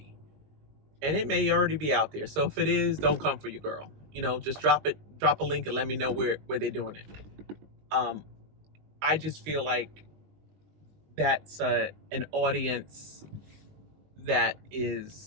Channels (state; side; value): late; left; 19 ms